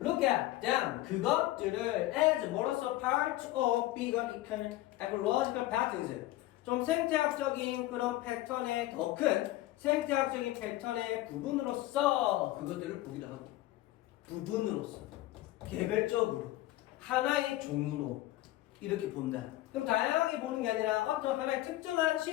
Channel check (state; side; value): quieter; right; 16.4 dB